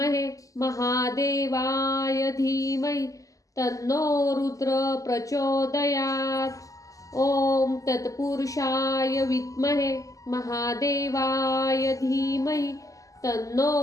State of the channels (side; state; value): right; late; 0.16 ms